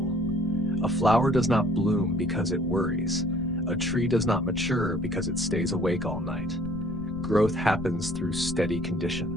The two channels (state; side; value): noise; left; rumble, 12 dB below the sound